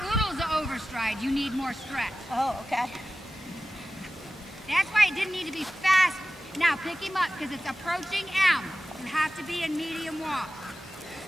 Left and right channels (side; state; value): both; normal; correlation 0.95